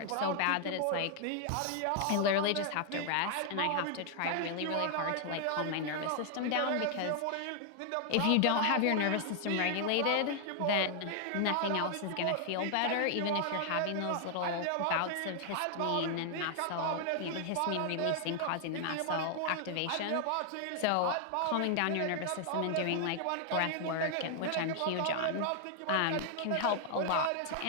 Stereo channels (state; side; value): different; both; correlation 0.00